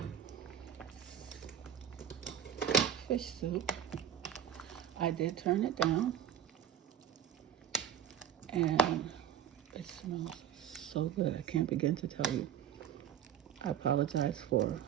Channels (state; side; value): quieter; left; 8.9 dB